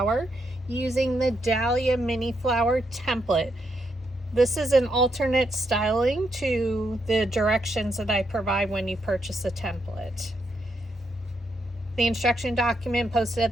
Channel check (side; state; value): both; normal; correlation 0.79